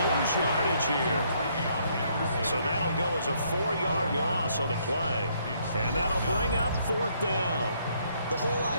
lose yardage here. So that'll go as a 4-yard loss on the play. And that'll bring up 4th down. The whole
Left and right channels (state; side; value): inverted; both; correlation -0.69